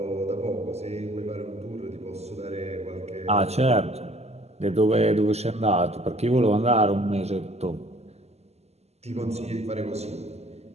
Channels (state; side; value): late; left; 0.30 ms